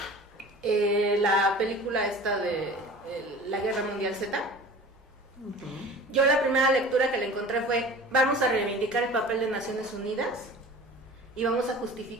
La película esta de la Guerra Mundial Z. Yo la primera lectura que le encontré fue: vamos a reivindicar el papel de Naciones Unidas y vamos a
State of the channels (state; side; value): normal; both; correlation 0.40